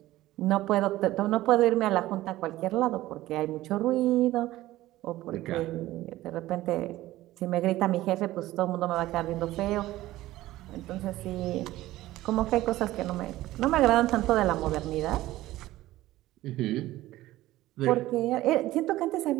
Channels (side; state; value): left; quieter; 16.2 dB